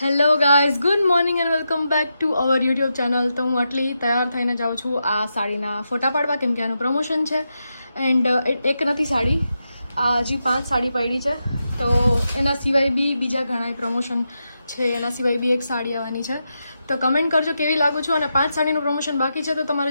Hello guys, good morning and welcome back to our YouTube channel. તો હું આટલી તૈયાર થઈને જાઉં છું આ સાડીના ફોટા પાડવા, કેમ કે આનું પ્રમોશન છે. એન્ડ એક નથી સાડી, આ હજી 5 સાડી પડી છે. તો એના સિવાય બી બીજા ઘણા પ્રમોશન છે, એના સિવાય બી એક સાડી આવવાની છે. તો કમેન્ટ કરજો કેવી લાગુ છું. અને 5 સાડીનું પ્રમોશન બાકી છે, તો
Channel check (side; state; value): both; inverted; correlation -0.86